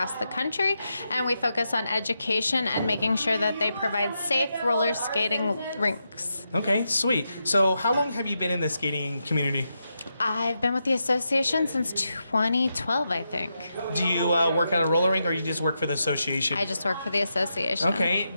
the country, and we focus on education and making sure that they provide safe roller skating rinks. Okay, sweet. So how long have you been in the skating community? I've been with the association since 2012, I think. Do you work at a roller rink or you just work for the association? I just work for the association. Okay.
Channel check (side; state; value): both; inverted; correlation -0.85